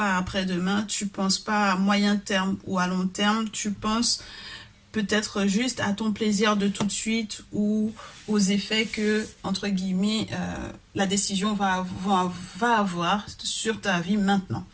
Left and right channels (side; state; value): both; identical; correlation 1.00